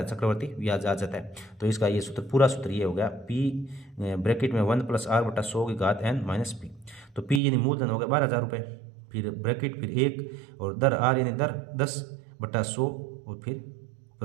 चक्रवर्ती ब्याज आ जाता है। तो इसका ये सूत्र, पूरा सूत्र ये हो गया पी ब्रैकेट में 1 + r/100 - p। तो पी यानी मूलधन हो गया 12,000 रुपये, फिर ब्रैकेट, फिर 1 और दर आर यानी दर 10/100 और फिर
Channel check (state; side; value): drops out; left; at 7.4 s